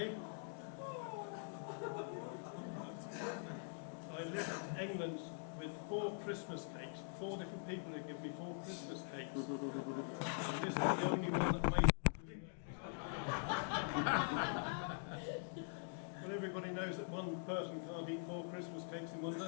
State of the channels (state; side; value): silent; right; digital silence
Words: I left England with 4 Christmas cakes. 4 different people who given me 4 Christmas cakes. And this is the only one that made it. Well, everybody knows that one person can't eat 4 Christmas cakes in one